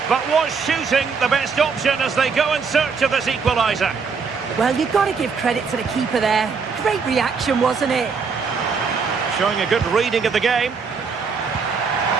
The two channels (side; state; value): left; quieter; 5.4 dB